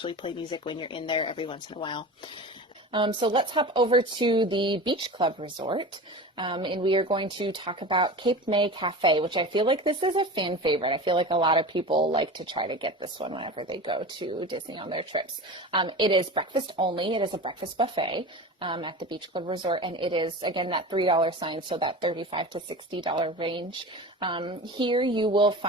play music when you're in there every once in a while. So let's hop over to the Beach Club Resort, and we are going to talk about Cape May Cafe, which I feel like this is a fan favorite. I feel like a lot of people like to try to get this one whenever they go to Disney on their trips. It is breakfast only. It is a breakfast buffet at the Beach Club Resort, and it is, again, that $3 sign, so that $35 to $60 range. Here you will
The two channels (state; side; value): normal; both; correlation 0.31